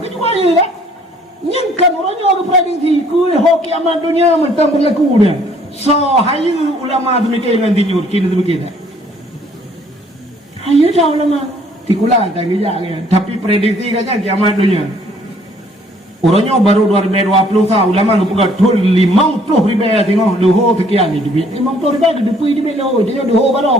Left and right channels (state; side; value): normal; both; correlation 0.61